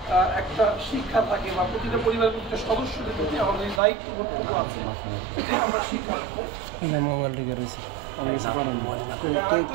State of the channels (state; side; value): drops out; left; at 3.8 s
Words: একটা শিক্ষা থাকে বা প্রতিটা পরিবারের প্রতিটা সদস্যদের প্রতি আমাদের দায়িত্ব কর্তব্য আছে, আমরা শিক্ষা দেবো।